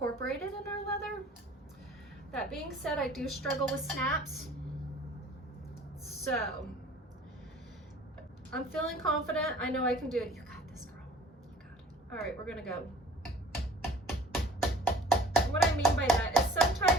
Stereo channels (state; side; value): normal; both; correlation 0.49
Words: in our leather. That being said, I do struggle with snaps. So, I'm feeling confident. I know I can do it. You got this, girl. You got it. All right, we're gonna go. And what I mean by that is